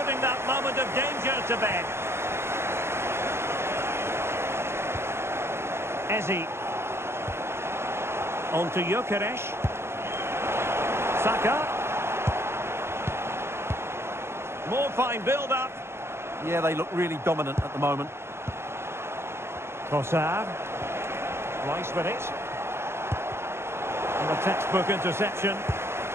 that moment of danger to bed. Ezi. On to Gyökeres. Saka. More fine build-up. Yeah, they look really dominant at the moment. Trossard. Rice with it. And a textbook interception.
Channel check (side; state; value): left; late; 0.12 ms